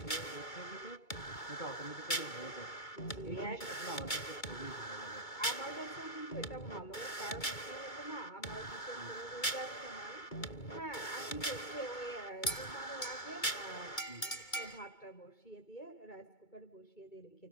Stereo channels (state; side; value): late; right; 2.2 ms